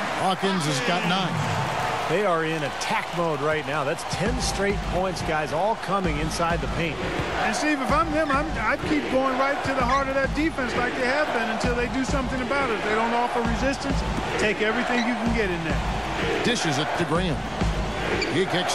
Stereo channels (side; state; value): both; identical; correlation 1.00